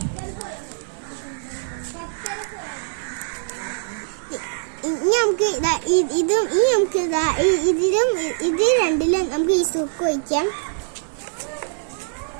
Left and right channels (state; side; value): silent; left; digital silence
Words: നമുക്ക് ഇതിൽ രണ്ടിലും നമുക്ക് ഈ സുക്ക് ഒഴിക്കാം.